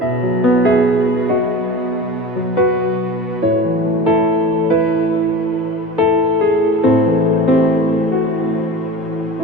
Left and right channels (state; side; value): normal; both; correlation 0.33